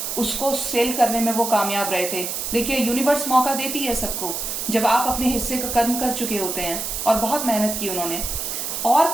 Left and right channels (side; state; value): right; noise; hiss, 4 dB below the sound